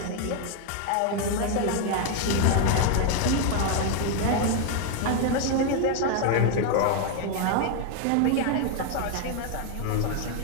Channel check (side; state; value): both; different; correlation 0.00